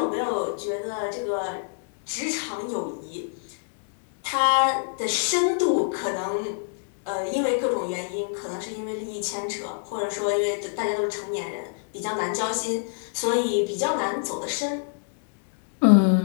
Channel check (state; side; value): silent; right; 61 dB below the other